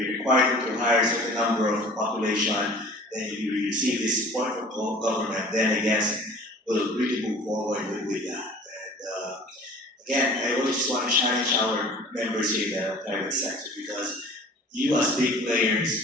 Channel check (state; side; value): normal; both; correlation 0.45